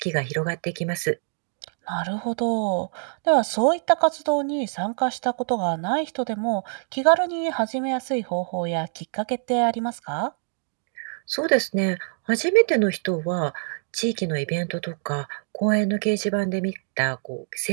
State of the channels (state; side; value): silent; left; digital silence